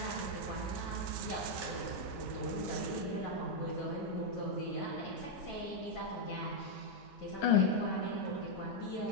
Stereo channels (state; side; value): normal; both; correlation -0.01